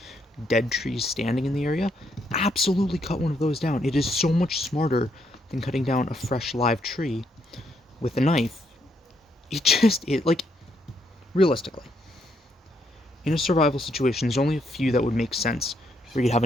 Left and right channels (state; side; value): normal; both; correlation 0.75